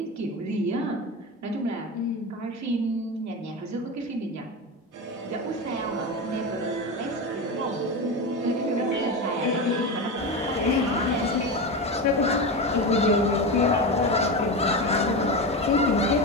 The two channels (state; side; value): normal; both; correlation 0.20